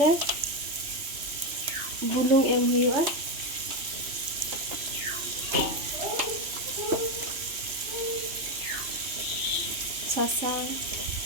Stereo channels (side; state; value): left; late; 3.0 ms